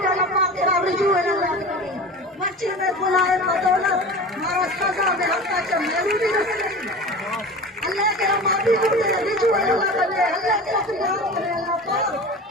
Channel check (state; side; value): normal; both; correlation 0.34